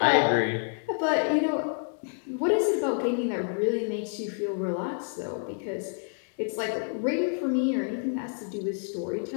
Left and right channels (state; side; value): silent; right; 56 dB below the other